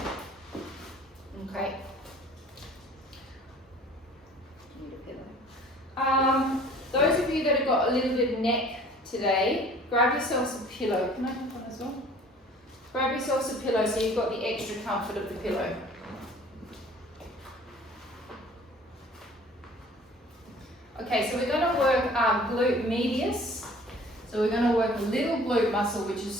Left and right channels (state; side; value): normal; both; correlation 0.49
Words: Okay. Those of you that have got a little bit of neck today, grab yourselves a pillow. Can I have one as well? Grab yourselves a pillow so you've got the extra comfort of the pillow. Okay, so we're going to work our glute medius. So we're going to work a little glute muscle, which is